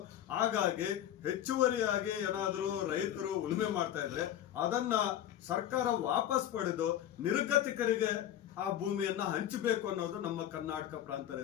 ಹಾಗಾಗಿ ಹೆಚ್ಚುವರಿಯಾಗಿ ಏನಾದರೂ ರೈತರು ಉಳುಮೆ ಮಾಡ್ತಾ ಇದ್ರೆ ಅದನ್ನ ಸರ್ಕಾರ ವಾಪಸ್ ಪಡೆದು ನಿರ್ಗತಿಕರಿಗೆ ಆ ಭೂಮಿಯನ್ನ ಹಂಚಬೇಕು ಅನ್ನೋದು ನಮ್ಮ ಕರ್ನಾಟಕ ಪ್ರಾಂತ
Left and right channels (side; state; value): right; quieter; 11.3 dB